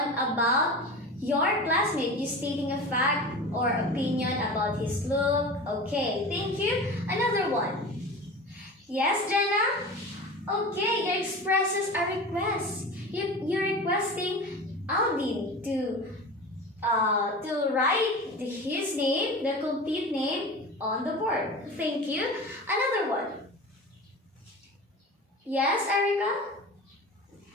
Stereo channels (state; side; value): normal; both; correlation 0.32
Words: about your classmate. You stating a fact or opinion about his look. Okay, thank you. Another one. Yes, Jenna? Okay, you expresses a request. You're requesting Alvin to write his name, the complete name, on the board. Thank you. Another one. Yes, Erica?